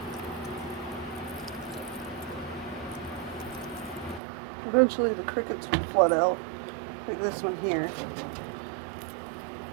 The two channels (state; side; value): drops out; left; at 4.2 s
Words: Eventually the crickets will flood out, like this one here.